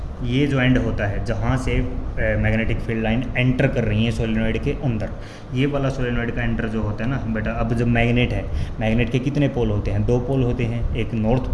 ये जो एंड होता है जहाँ से मैग्नेटिक फील्ड लाइन एंटर कर रही है सोलेनॉइड के अंदर, ये वाला सोलेनॉइड का एंटर जो होता है ना बेटा, अब जब मैग्नेट है, मैग्नेट के कितने पोल होते हैं, 2 पोल होते हैं, एक नॉर्थ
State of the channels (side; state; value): both; identical; correlation 1.00